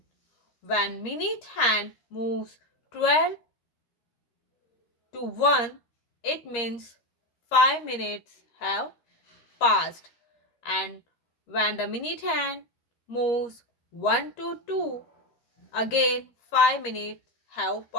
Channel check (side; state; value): right; late; 13 ms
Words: When minute hand moves 12 to 1, it means 5 minutes have passed. And when the minute hand moves 1 to 2, again 5 minutes have